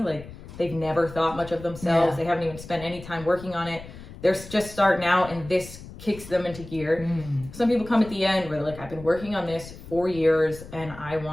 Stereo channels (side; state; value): left; noise; rumble, 15 dB below the sound